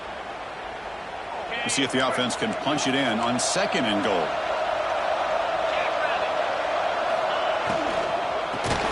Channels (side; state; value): both; identical; correlation 1.00